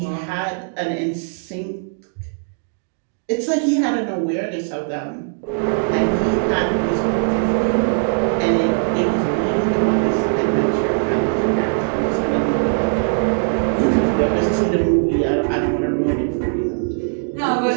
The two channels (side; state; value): left; silent; 62 dB below the other